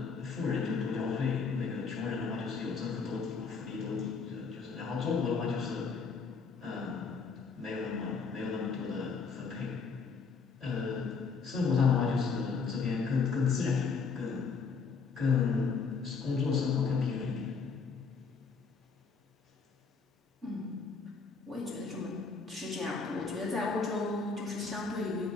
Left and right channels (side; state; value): right; quieter; 5.0 dB